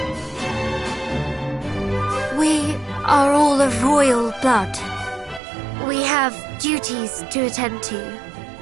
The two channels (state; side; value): drops out; left; at 5.4 s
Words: We are all of royal blood. We have duties to attend to.